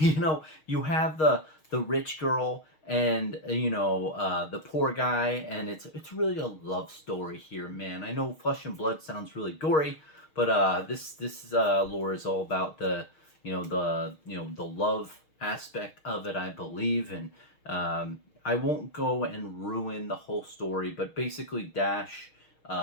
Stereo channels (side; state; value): right; late; 6.5 ms